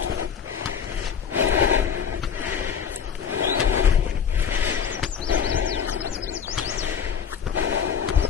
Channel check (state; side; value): quieter; right; 7.3 dB